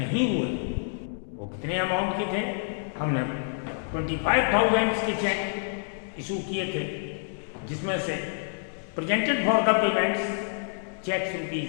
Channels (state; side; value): silent; right; digital silence